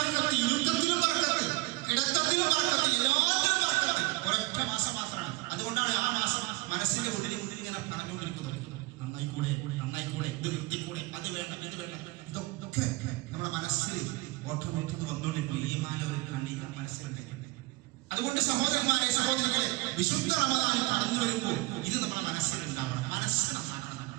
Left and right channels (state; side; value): quieter; left; 22.4 dB